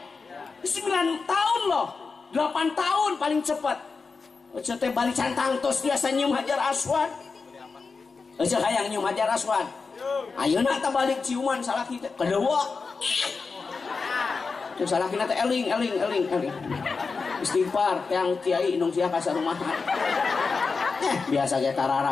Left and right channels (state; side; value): quieter; right; 4.6 dB